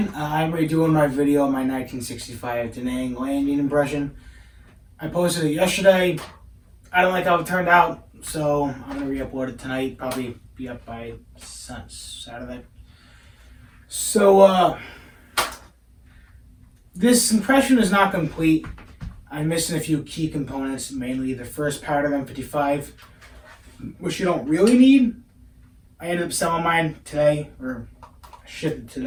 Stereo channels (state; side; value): identical; both; correlation 1.00